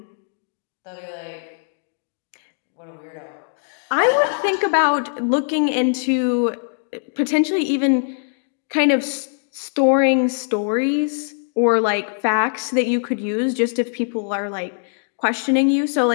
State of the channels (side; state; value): right; silent; digital silence